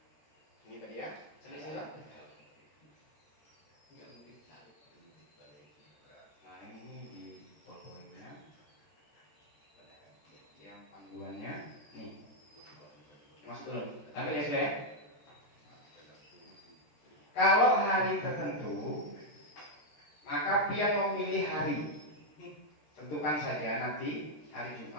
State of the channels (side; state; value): right; late; 14 ms